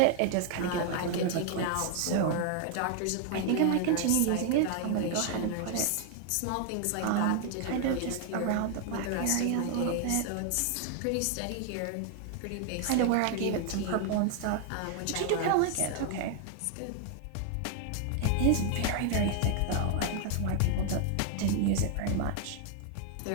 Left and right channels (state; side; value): different; both; correlation 0.00